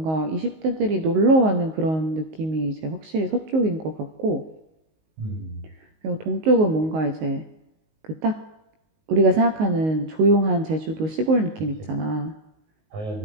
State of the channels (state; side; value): late; left; 19 ms